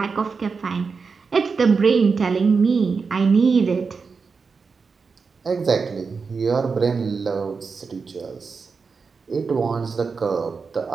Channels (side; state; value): left; quieter; 5.0 dB